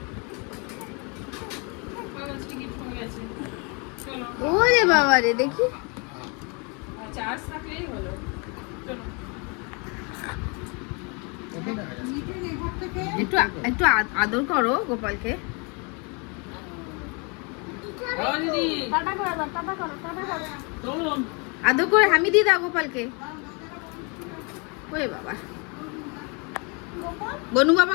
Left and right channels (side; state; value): right; quieter; 32.5 dB